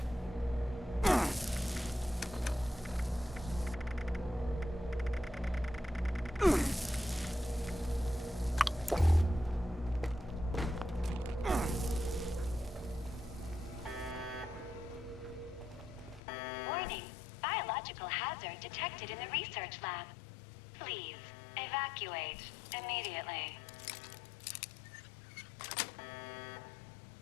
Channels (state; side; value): drops out; right; at 16.2 s